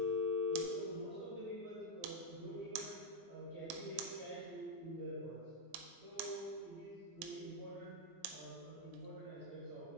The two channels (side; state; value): both; normal; correlation -0.01